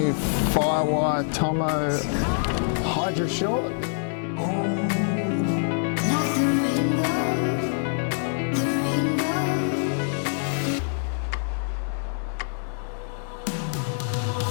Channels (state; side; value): silent; right; digital silence